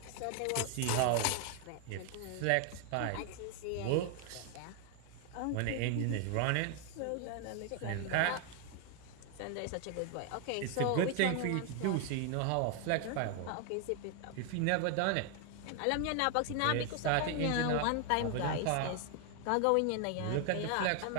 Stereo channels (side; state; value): both; different; correlation 0.00